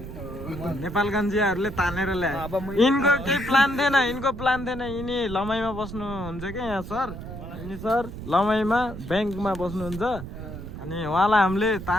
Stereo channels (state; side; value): noise; right; rumble, 10 dB below the sound